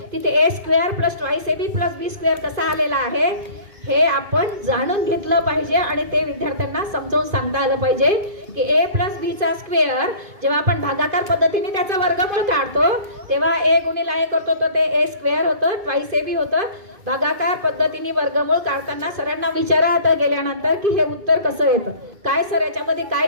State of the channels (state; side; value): late; left; 2.5 ms